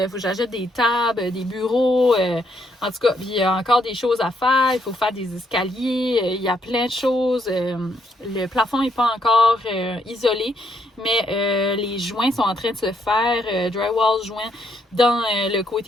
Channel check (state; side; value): normal; both; correlation 0.74